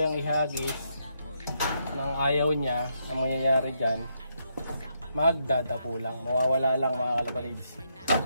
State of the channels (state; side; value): inverted; both; correlation -0.79